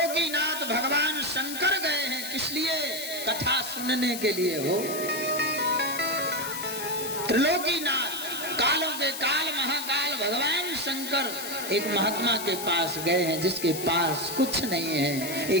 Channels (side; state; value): left; noise; hiss, 7 dB below the sound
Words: भगवान शंकर गए हैं। किस लिए? कथा सुनने के लिए हो। त्रिलोकीनाथ, कालों के काल महाकाल भगवान शंकर एक महात्मा के पास गए हैं, जिसके पास कुछ नहीं है,